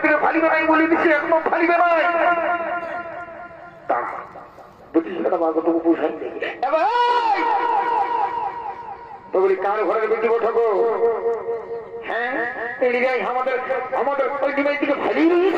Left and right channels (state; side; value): identical; both; correlation 1.00